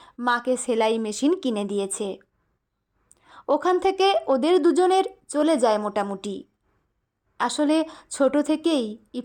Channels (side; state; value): both; identical; correlation 1.00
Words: মাকে সেলাই মেশিন কিনে দিয়েছে। ওখান থেকে ওদের দুজনের চলে যায় মোটামুটি। আসলে ছোট থেকেই